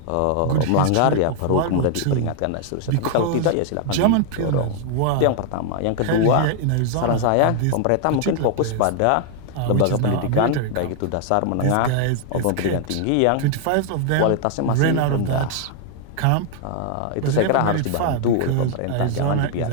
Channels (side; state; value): both; different; correlation 0.00